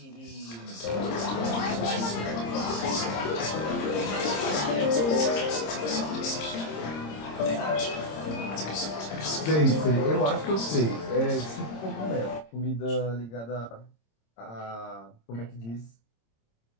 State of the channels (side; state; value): right; late; 26 ms